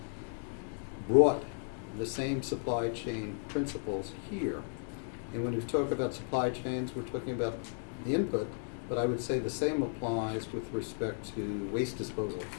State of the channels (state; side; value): silent; right; 55 dB below the other